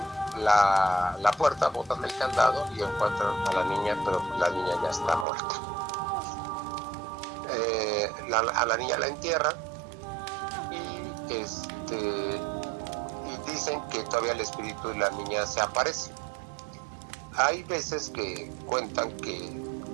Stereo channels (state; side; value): drops out; left; at 5.2 s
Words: la puerta, botan el candado y encuentran a la niña, pero la niña ya está muerta. A la niña la entierran y dicen que todavía el espíritu de la niña se aparece. Hay veces que cuentan que